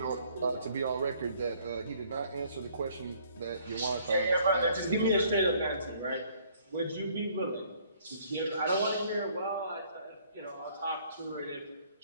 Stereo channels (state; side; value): inverted; both; correlation -0.60